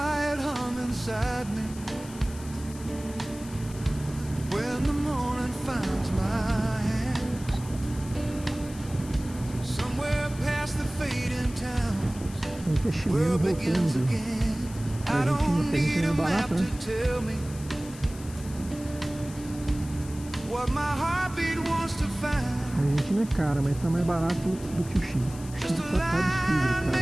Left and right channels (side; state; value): left; noise; hiss, 17 dB below the sound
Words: hum inside me when the morning finds my hands, somewhere past the fading towns, where Investimento begins voltando. again. I don't need a map to tell me what my heartbeat wants to A find. gente não é cara, mas tá mais barato do que o Chile. O Just Chile a tá line